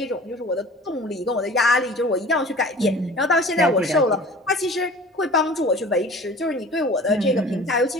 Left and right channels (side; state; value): both; normal; correlation 0.42